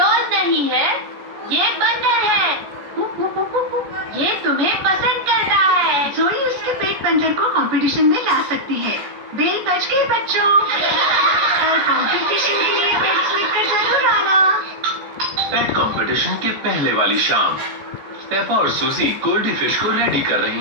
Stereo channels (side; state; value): left; late; 14 ms